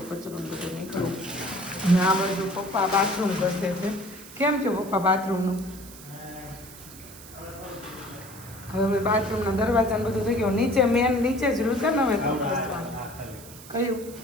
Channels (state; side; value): noise; right; hiss, 17 dB below the sound